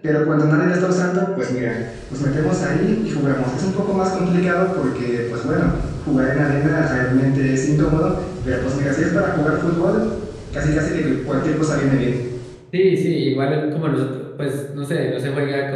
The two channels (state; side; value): identical; both; correlation 1.00